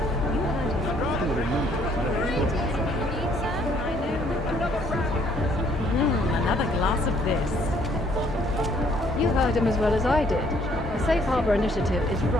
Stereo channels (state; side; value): normal; both; correlation 0.64